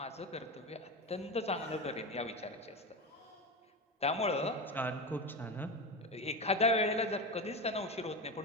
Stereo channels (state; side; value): normal; both; correlation 0.20